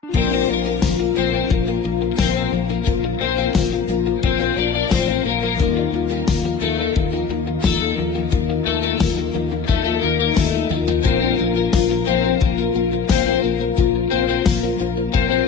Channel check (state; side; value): quieter; right; 5.6 dB